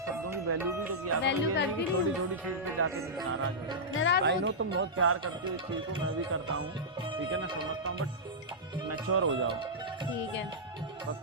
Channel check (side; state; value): both; normal; correlation -0.11